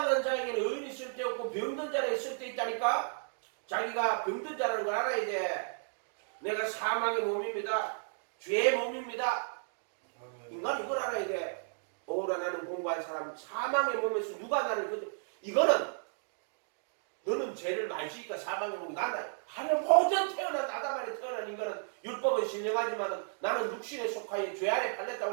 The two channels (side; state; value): left; silent; digital silence